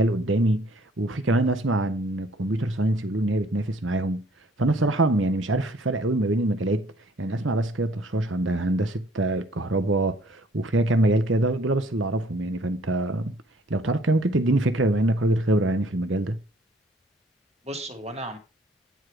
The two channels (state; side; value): normal; both; correlation 0.59